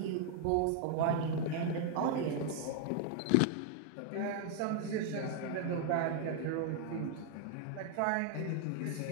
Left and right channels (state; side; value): different; both; correlation 0.00